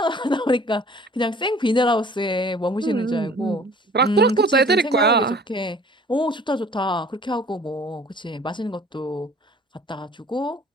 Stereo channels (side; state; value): both; normal; correlation 0.51